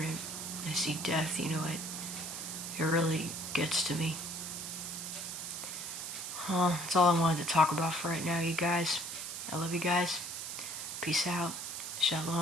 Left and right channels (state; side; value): noise; right; hiss, 6 dB below the sound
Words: and I see death, it really gets to me. That's all I wanted to talk about for right now, you guys. I love you guys. Peace out.